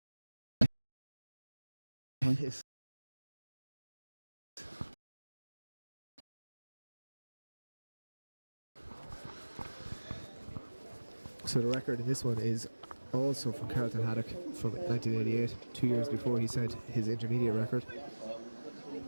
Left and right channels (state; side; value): inverted; both; correlation -1.00